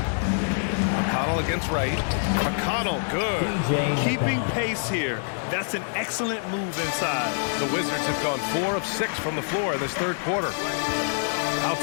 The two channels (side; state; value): right; silent; digital silence